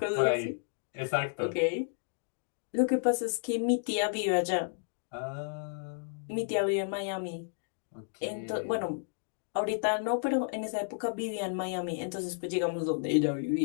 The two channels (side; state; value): right; silent; digital silence